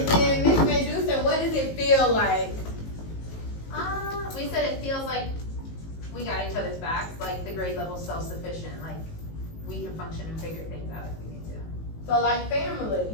then Miss Medusa, what does it feel like? We said it feels like we got each other's backs, like the grade level self-sufficient, like we can function and figure things out if we need to. So like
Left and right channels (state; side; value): late; right; 19 ms